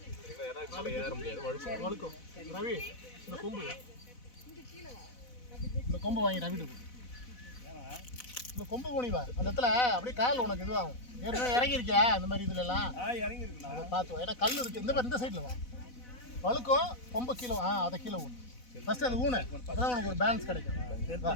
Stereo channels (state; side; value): late; right; 4.0 ms